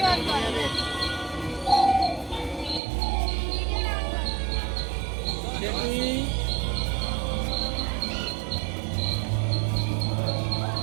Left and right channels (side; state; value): left; drops out; at 2.8 s